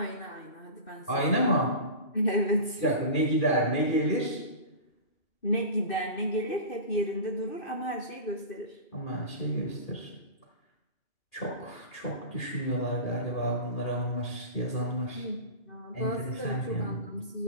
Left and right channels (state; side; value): late; right; 2.6 ms